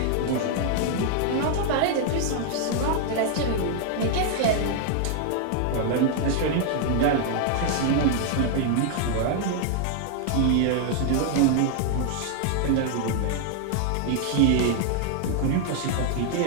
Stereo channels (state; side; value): different; both; correlation 0.00